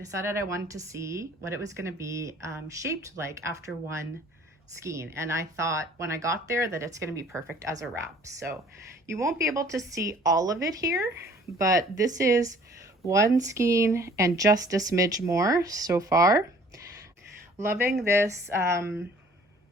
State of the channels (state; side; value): normal; both; correlation 0.54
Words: I wanted to see what it was going to be shaped like after one skein, and I thought when I got there that it's going to be perfect as a wrap. So you won't be able to see all of it here, but this is one skein and just a smidge more so far. Loving this